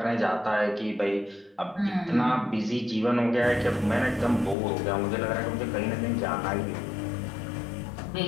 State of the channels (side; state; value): right; drops out; at 4.5 s